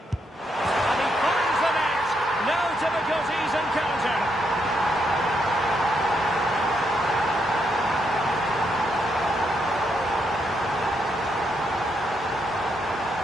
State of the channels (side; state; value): both; normal; correlation 0.78